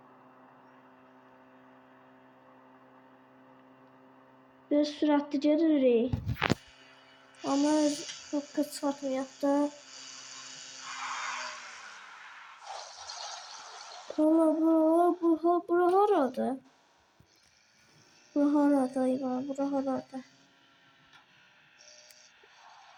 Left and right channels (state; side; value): identical; both; correlation 1.00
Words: Biraz süratli gedirik. Ama çok kısmetmeyek da. Valla bura harada? Bura harada İvan? Bura harada?